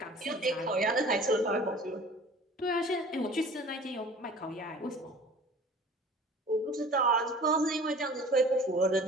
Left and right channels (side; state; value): both; normal; correlation 0.45